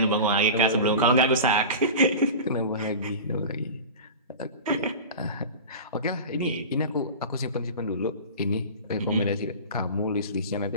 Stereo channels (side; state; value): both; inverted; correlation -0.31